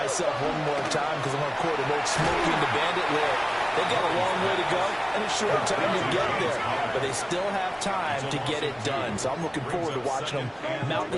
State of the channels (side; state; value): both; identical; correlation 1.00